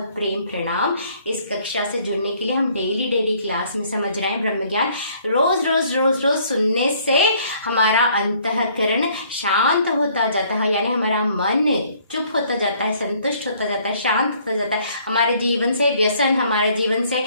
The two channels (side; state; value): both; inverted; correlation -0.62